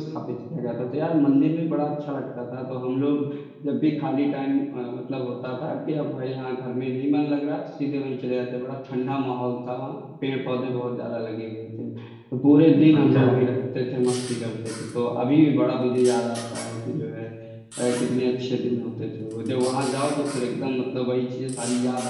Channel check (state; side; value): identical; both; correlation 1.00